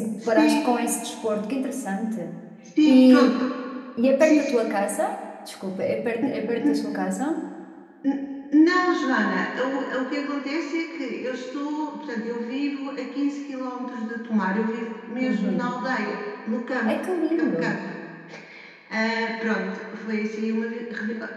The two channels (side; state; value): both; identical; correlation 1.00